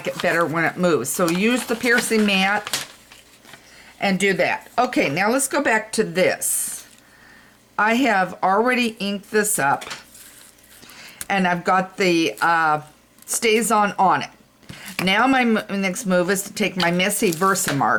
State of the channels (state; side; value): identical; both; correlation 1.00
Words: it better when it moves. So use the piercing mat and do that. Okay, now let's go back to this. I have already inked this up and I've got the stays on it. Now my next move is to take my messy